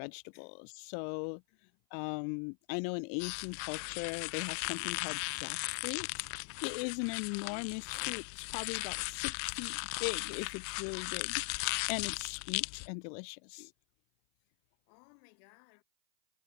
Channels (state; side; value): silent; right; 51 dB below the other